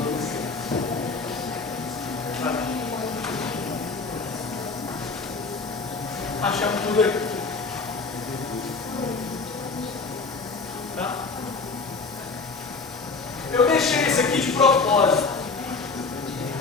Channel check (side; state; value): right; quieter; 4.2 dB